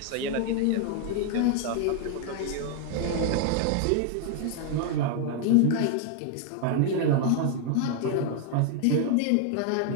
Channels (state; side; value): different; both; correlation 0.00